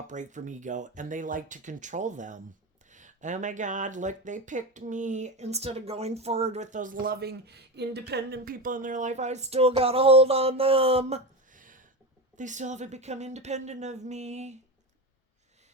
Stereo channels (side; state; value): both; normal; correlation 0.20